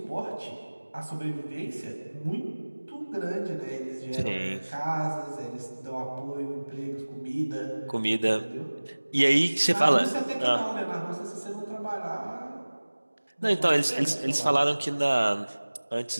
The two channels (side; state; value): both; inverted; correlation -1.00